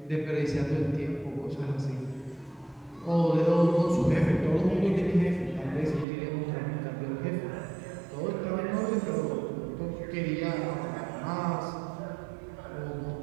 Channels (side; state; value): left; drops out; at 6.1 s